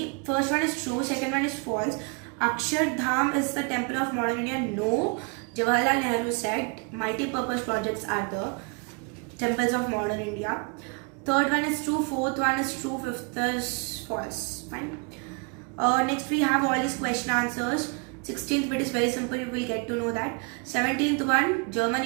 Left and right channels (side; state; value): left; quieter; 33.1 dB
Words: First one is true. Second one is false. Akshardham is the temple of modern India. No. Jawaharlal Nehru said multi-purpose projects are the temples of modern India. Third one is true. Fourth one is true. Fifth is false. Fine. Next we have all these question answers. 16th bit is very simple, you will get to know that. 17th one, German